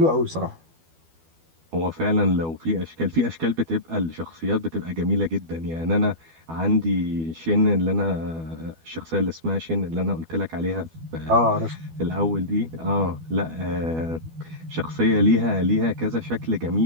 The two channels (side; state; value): left; late; 12 ms